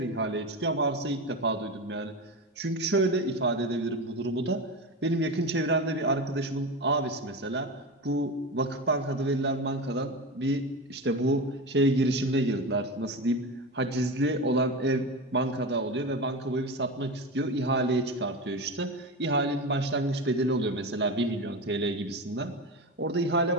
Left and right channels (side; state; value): both; normal; correlation 0.23